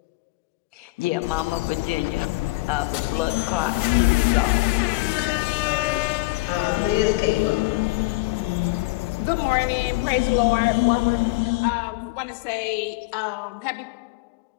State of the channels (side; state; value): right; quieter; 22.9 dB